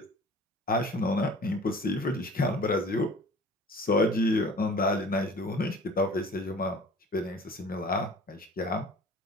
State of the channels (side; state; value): both; normal; correlation 0.45